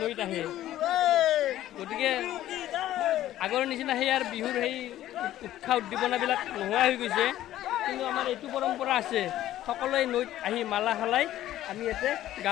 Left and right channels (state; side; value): quieter; right; 13.5 dB